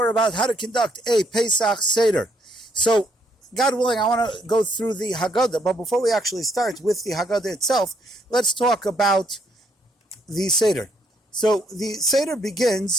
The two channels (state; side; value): normal; both; correlation 0.71